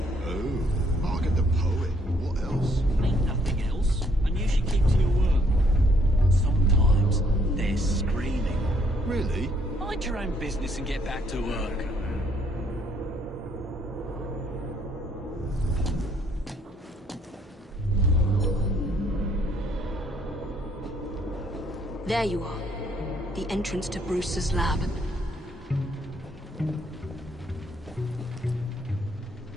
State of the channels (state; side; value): normal; both; correlation 0.67